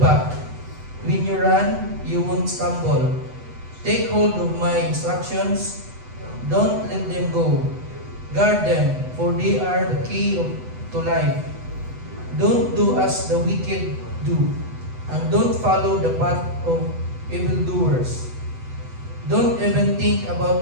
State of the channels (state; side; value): late; left; 8.0 ms